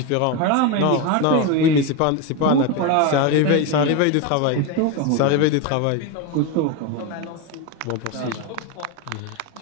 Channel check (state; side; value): different; both; correlation 0.03